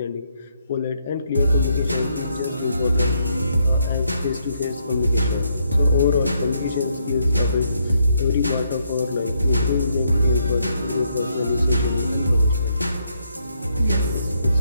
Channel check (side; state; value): both; inverted; correlation -0.75